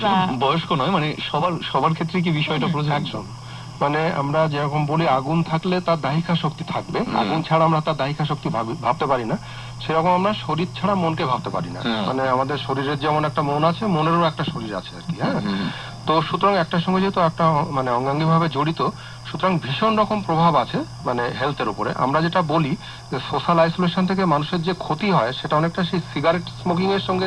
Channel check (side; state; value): both; identical; correlation 1.00